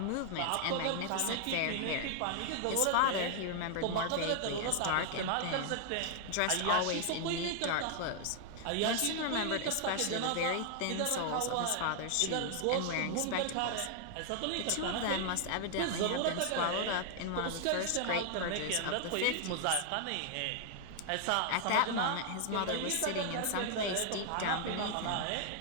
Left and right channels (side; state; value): both; different; correlation 0.00